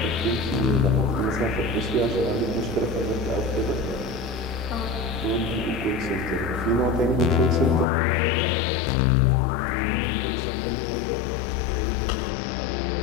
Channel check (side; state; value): right; drops out; at 7.9 s